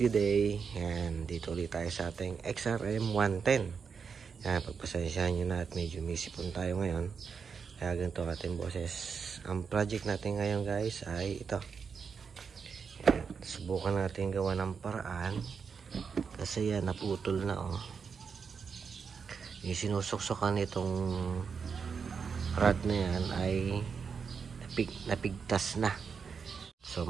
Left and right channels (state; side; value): quieter; left; 6.0 dB